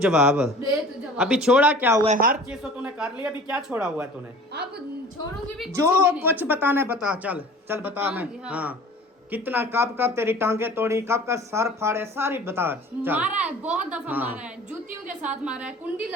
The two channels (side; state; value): both; normal; correlation 0.44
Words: दे तू जवाब। अभी छोड़ा क्या हुआ है? हर चीज तो तूने कर लिया, अभी क्या छोड़ा हुआ है तूने? अब छोड़ूंगी भी जो भी नहीं। कुछ बताना है बता। चल चल बता। मैं हाँ। हाँ कितना कब कब तेरी टांगे तोड़ी, कब का सर फाड़े, सारी बता। चल मारा है, बहुत दफा हाँ। मारा है, जूतियों के साथ मारा है, कुंडी